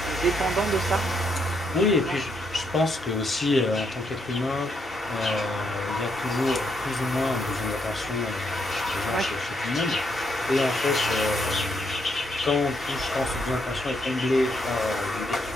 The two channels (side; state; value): both; normal; correlation 0.76